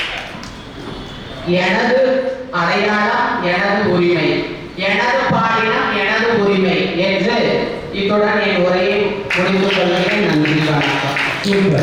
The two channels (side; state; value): both; identical; correlation 1.00